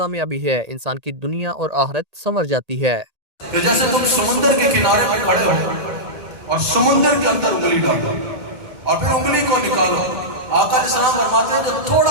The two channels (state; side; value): late; left; 2.1 ms